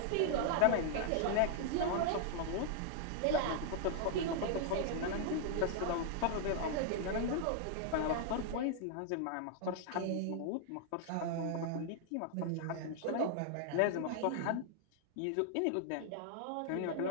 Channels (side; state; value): both; different; correlation 0.00